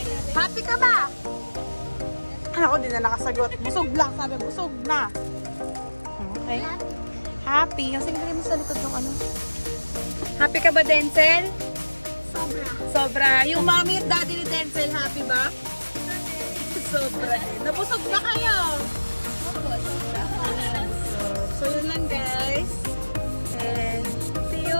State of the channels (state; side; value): inverted; both; correlation -1.00